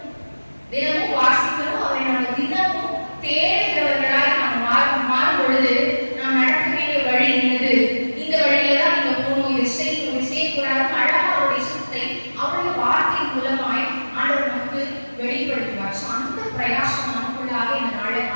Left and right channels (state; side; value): inverted; both; correlation -1.00